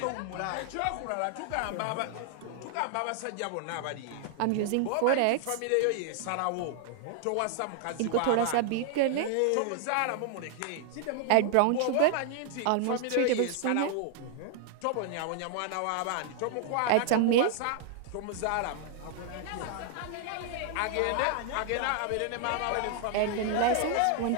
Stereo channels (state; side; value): different; both; correlation 0.00